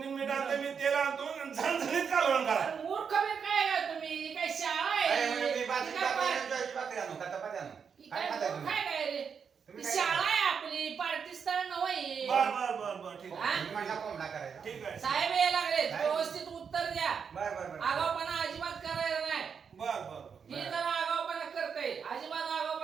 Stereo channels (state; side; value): quieter; left; 6.5 dB